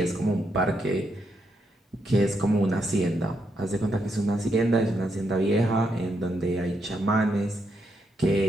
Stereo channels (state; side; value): normal; both; correlation 0.79